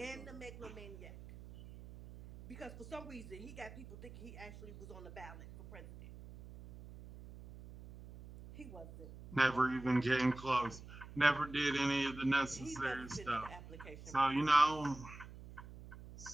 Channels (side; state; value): right; noise; hum, 15 dB below the sound